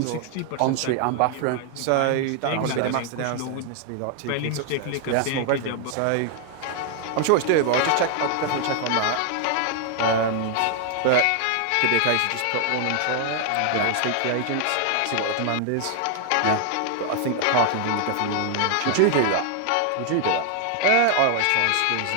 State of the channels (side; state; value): both; different; correlation 0.00